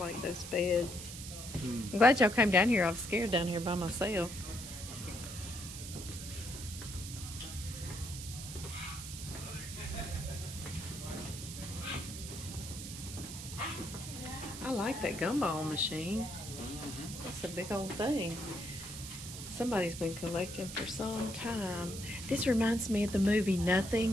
those beds. I'm glad y'all came down here. I was scared down here by myself. I like that gumball machine. That's a big old thing. Somebody's been collecting for some time. This reminds me of the movie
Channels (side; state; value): right; noise; hiss, 10 dB below the sound